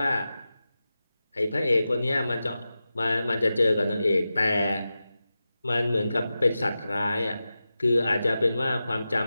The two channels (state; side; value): inverted; both; correlation -0.93